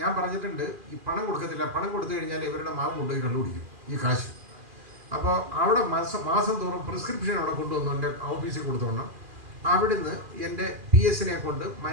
ഞാൻ പറഞ്ഞിട്ടുണ്ട് ഈ പണം കൊടുക്കത്തില്ല, പണം കൊടുത്തു കഴിഞ്ഞാൽ ഇവരുടെ മാവ് കൊണ്ടുപോയി കണ്ടുപിടിക്കും ഈ കാശ്. അപ്പോൾ അവിടെ മാസം തോറും പ്രിസ്ക്രിപ്ഷൻ അവിടെ കൊണ്ടുവന്നു എൻ്റെ ഓഫീസിൽ കൊടുത്തോണം. അവിടുന്ന് എൻ്റെ PS കൊണ്ട്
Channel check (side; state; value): left; late; 2.4 ms